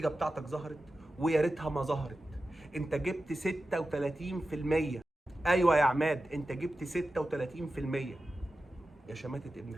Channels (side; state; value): both; normal; correlation 0.93